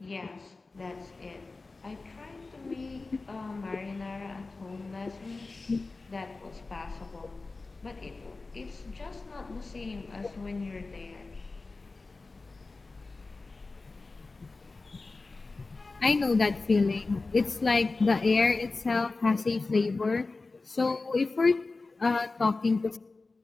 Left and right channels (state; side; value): quieter; right; 3.6 dB